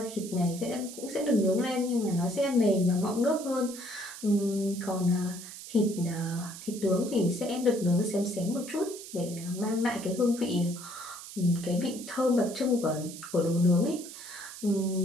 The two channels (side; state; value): right; noise; hiss, 13 dB below the sound